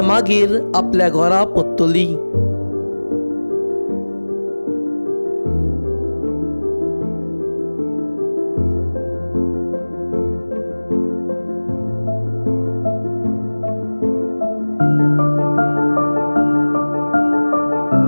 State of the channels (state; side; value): inverted; both; correlation -1.00